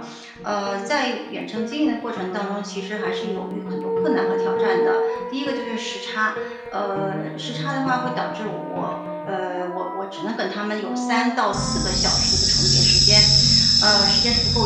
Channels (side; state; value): both; identical; correlation 1.00